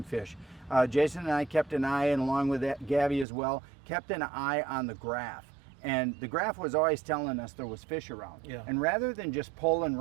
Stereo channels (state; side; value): drops out; left; at 3.2 s